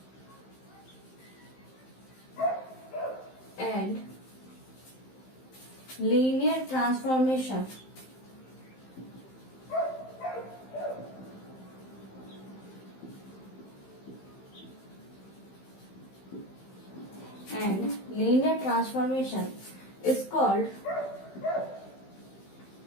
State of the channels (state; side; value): late; right; 15 ms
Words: and linear transformation is called